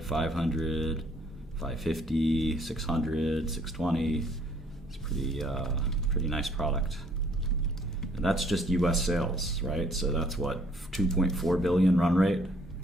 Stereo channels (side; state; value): both; normal; correlation 0.62